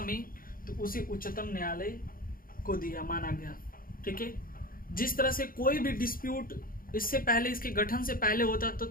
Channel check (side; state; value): right; late; 0.41 ms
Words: में तो उसे उच्चतम न्यायालय को दिया माना गया। ठीक है, जिस तरह से कोई भी डिस्प्यूट इससे पहले, इसके गठन से पहले होता